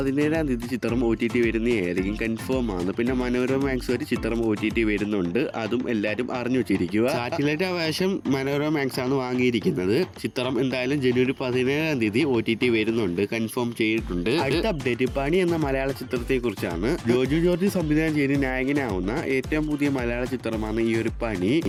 തീയതി ചിത്രം OTT വരുന്നതായിരിക്കും, കൺഫേം ആണ്. പിന്നെ മനോരമ മാക്സ് വരെ ചിത്രം OTT വരുന്നുണ്ട്, അതും എല്ലാവരും അറിഞ്ഞു വെച്ചിരിക്കുക. സാറ്റലൈറ്റ് അവകാശം മനോരമ മാക്സ് ആണ് വാങ്ങിയിരിക്കുന്നത്. ചിത്രം എന്തായാലും ജനുവരി 17-ാം തീയതി OTT വരുന്നുണ്ട്, കൺഫേം ചെയ്തിട്ടുണ്ട്. അടുത്ത അപ്ഡേറ്റ്, പണി എന്ന മലയാള ചിത്രത്തെ കുറിച്ചാണ്. ജോജു ജോർജ് സംവിധാനം ചെയ്ത് നായകനാവുന്ന ഏറ്റവും പുതിയ മലയാള ചിത്രമാണ് ഈ ഒരു പണി.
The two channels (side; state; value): both; identical; correlation 1.00